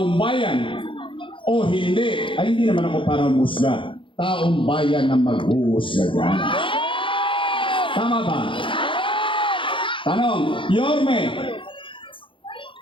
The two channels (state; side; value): late; right; 0.25 ms